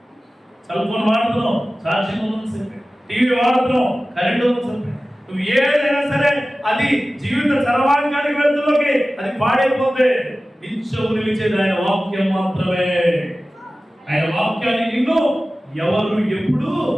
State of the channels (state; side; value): normal; both; correlation 0.96